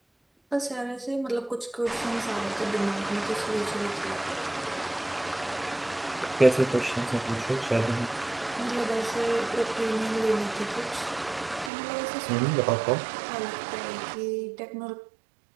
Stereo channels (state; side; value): drops out; left; at 11.7 s